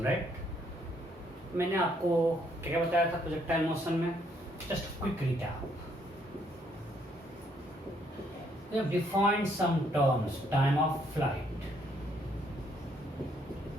right? मैंने आपको क्या क्या बताया था प्रोजेक्टाइल मोशन में? Just quick recap. We have defined some terms, time of flight.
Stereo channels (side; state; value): both; normal; correlation 0.69